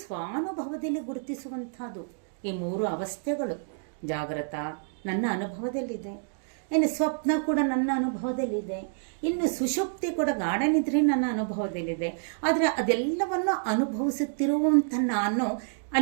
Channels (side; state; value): left; silent; digital silence